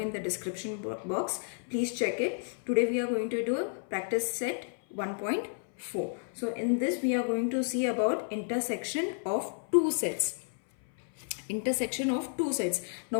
the description box. Please check it. Today we are going to do a practice set 1.4. So in this we are going to see about intersection of two sets. Intersection of two sets.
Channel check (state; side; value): silent; right; 56 dB below the other